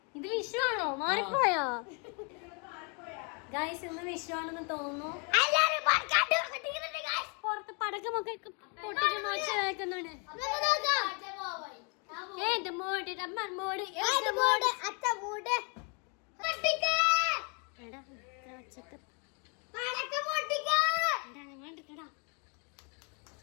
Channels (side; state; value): right; quieter; 35.6 dB